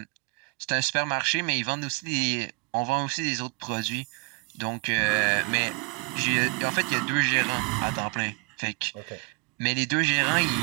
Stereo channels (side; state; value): left; quieter; 32.7 dB